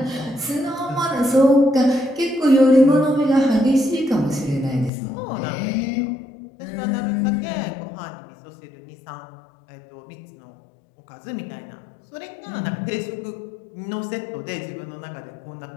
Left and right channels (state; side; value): drops out; right; at 4.9 s